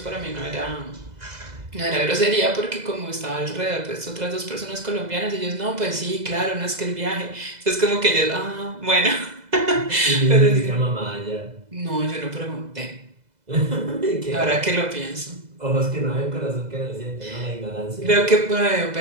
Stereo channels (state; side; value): late; left; 2.0 ms